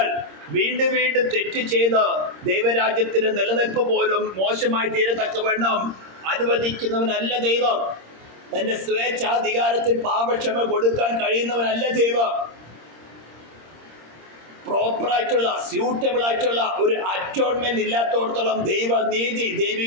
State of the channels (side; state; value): left; late; 26 ms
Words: വീണ്ടും വീണ്ടും തെറ്റ് ചെയ്ത് ദൈവരാജ്യത്തിന് നിലനിൽപ്പ് പോലും മോശമായി തീരത്തക്കവണ്ണം അനുവദിക്കുന്നവനല്ല ദൈവം. തന്റെ സ്വേച്ഛാധികാരത്തിൽ പാപക്ഷമ കൊടുക്കാൻ കഴിയുന്നവനല്ല ദൈവം. പ്രോപ്പറായിട്ടുള്ള സ്യൂട്ടബിൾ ആയിട്ടുള്ള ഒരു അറ്റോൺമെന്റ് ഇല്ലാത്തോടത്തോളം ദൈവനീതി,